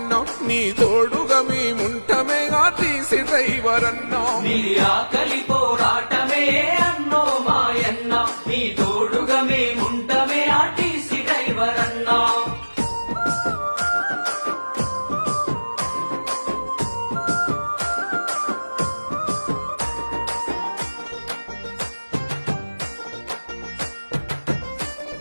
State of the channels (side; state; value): both; inverted; correlation -1.00